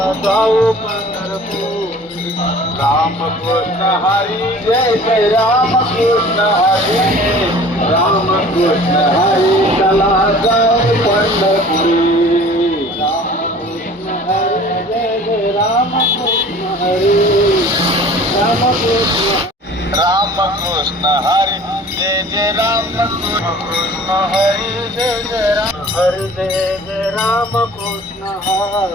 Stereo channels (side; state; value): both; normal; correlation 0.46